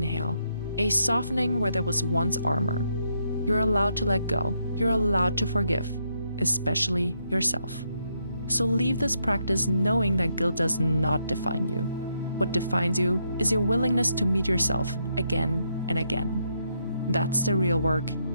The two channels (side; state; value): both; inverted; correlation -0.78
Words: a softening where there was once armor. You're allowed to let go. You're allowed to forgive, especially yourself. So leave this practice knowing that guilt does not define you. What defines you is your willingness to meet yourself again and again. That's the real work,